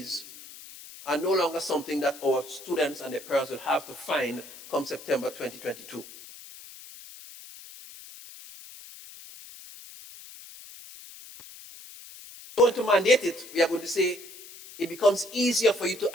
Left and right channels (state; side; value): noise; left; hiss, 17 dB below the sound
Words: are no longer something that our students and their parents will have to find come September 2022. We're going to mandate it. We are going to say it becomes easier for you to